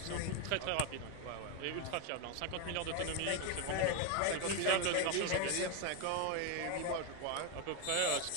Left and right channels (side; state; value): both; different; correlation 0.02